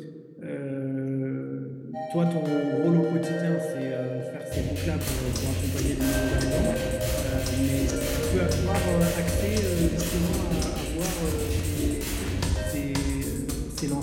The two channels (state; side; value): identical; both; correlation 1.00